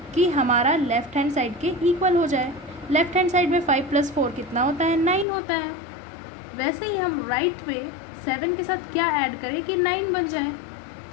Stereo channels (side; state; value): right; drops out; at 5.2 s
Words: कि हमारा लेफ़्ट हैंड साइड के इक्वल हो जाए। लेफ़्ट हैंड साइड में 5 + 4 कितना होता है, 9 होता है। वैसे ही हम राइट पे 7 के साथ क्या ऐड करें कि 9 बन जाए।